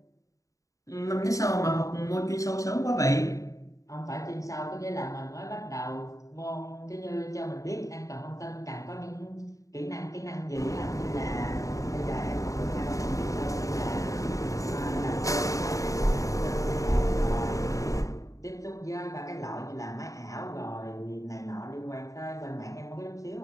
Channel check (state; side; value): late; right; 0.16 ms